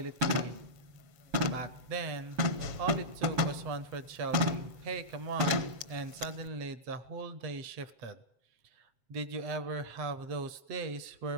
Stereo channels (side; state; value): left; late; 7.7 ms